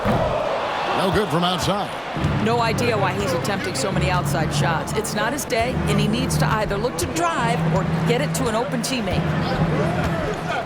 No good from outside. No idea why he's attempting so many outside shots. It's not his day, and he needs to either look to drive or get it to an open teammate.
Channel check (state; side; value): identical; both; correlation 1.00